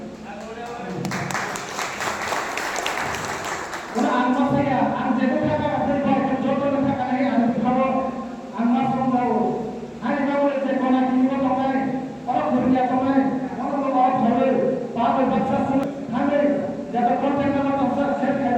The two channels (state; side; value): identical; both; correlation 1.00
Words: orang anma saya anjir berkata dari bawah jodoh berkata ini anu kalau anma selalu hari kau itu konak ini orang orang bekerja orang orang boleh bawa baca semua kami jatuh konten nama tafsir saya